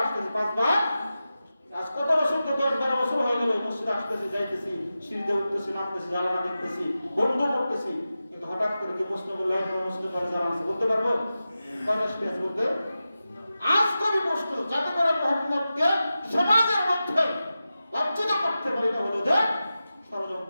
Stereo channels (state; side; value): inverted; both; correlation -0.93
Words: আসতেছি, 5 বার। আজ কত বছর তো 10-12 বছর হয়ে গেল মসজিদে আসতেছি, যাইতেছি, সিঁড়িতে উঠতেছি, নামতেছি, জানালা দেখতেছি, বন্ধ করতেছি, কিন্তু হঠাৎ করে কি প্রশ্ন করলে মসজিদে করে জানা আছে? বলতে পারবো কয়টা সিঁড়ি আছে? বলতে আজ কবি প্রশ্ন, যাতে করে মুহাম্মদকে সমাজের মধ্যে লাঞ্ছিত করতে পারে, এটা হলো যে